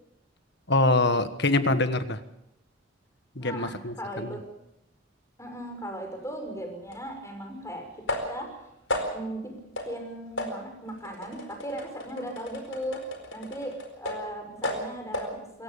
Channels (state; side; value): normal; both; correlation 0.04